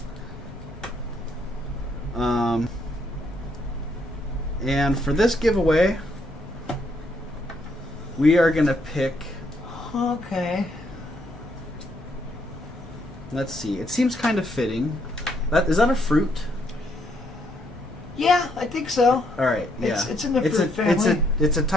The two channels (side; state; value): left; noise; rumble, 22 dB below the sound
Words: And for this giveaway, we are gonna pick. Okay. Let's see. It seems kind of fitting. Is that a fruit? Yeah, I think so. All right. Yeah. It's in the fruit family. It's a